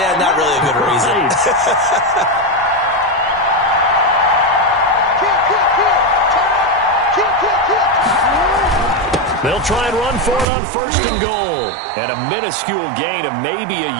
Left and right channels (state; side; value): drops out; left; at 10.5 s